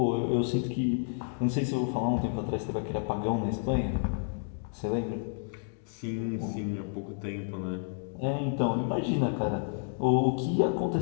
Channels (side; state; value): right; silent; 58 dB below the other